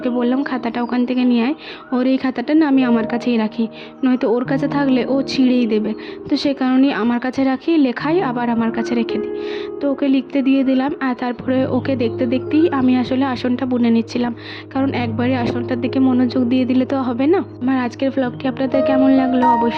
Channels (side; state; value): both; identical; correlation 1.00